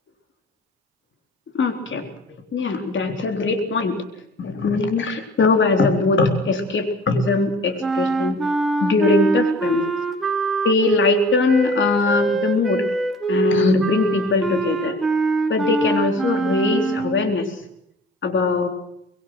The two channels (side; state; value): both; normal; correlation 0.45